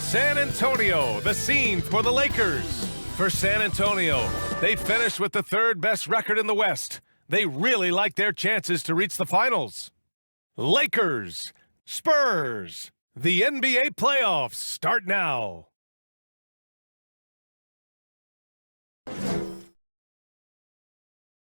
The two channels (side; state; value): both; inverted; correlation -1.00